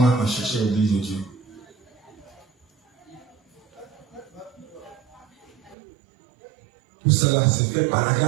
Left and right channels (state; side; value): drops out; left; at 5.8 s